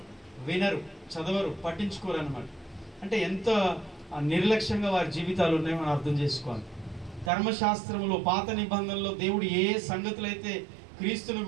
వినరు, చదవరు, పట్టించుకోరు అనమాట. అంటే ఎంత నిర్లక్ష్యంగా వారి జీవితాలు ఉన్నాయో మనం అర్థం చేసుకోవాలి. ధర్మశాస్త్రంలో పాత నిబంధనలో దేవుడు ఏ సంగతులు అయితే క్రీస్తుని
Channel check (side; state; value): left; drops out; at 7.3 s